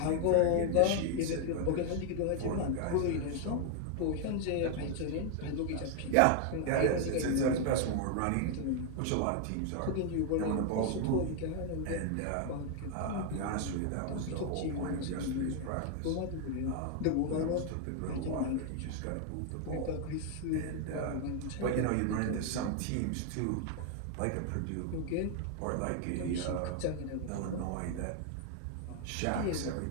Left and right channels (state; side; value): different; both; correlation 0.00